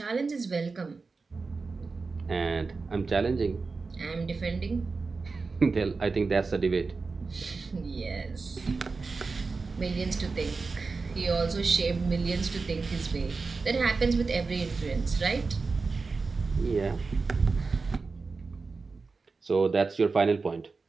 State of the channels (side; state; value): left; quieter; 4.2 dB